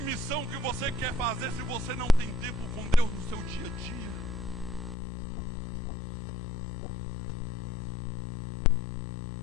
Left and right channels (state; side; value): drops out; right; at 5.0 s